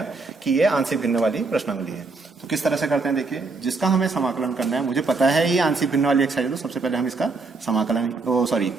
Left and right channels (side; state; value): left; quieter; 3.9 dB